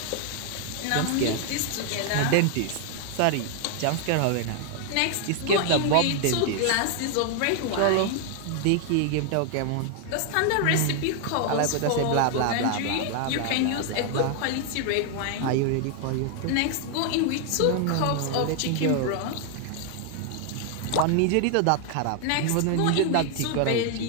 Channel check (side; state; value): both; different; correlation 0.00